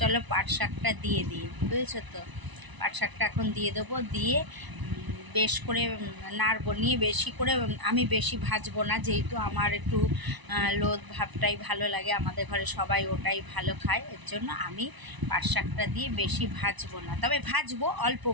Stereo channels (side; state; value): left; late; 1.0 ms